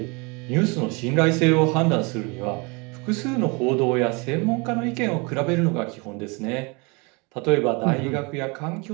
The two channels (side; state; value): left; quieter; 29.3 dB